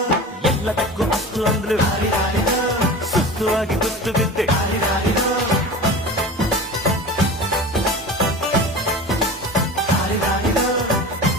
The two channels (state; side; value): normal; both; correlation 0.34